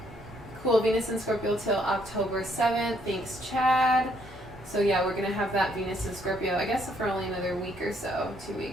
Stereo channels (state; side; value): normal; both; correlation 0.70